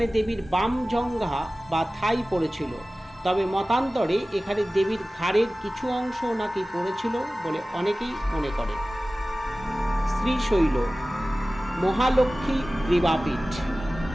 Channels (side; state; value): both; normal; correlation 0.97